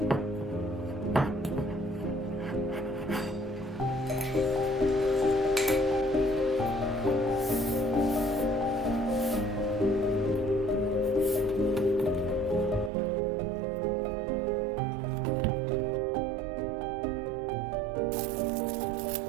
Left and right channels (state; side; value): drops out; left; at 12.9 s